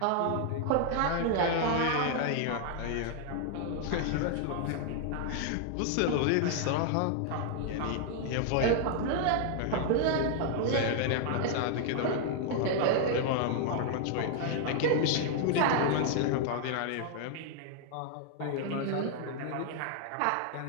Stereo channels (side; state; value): both; different; correlation 0.00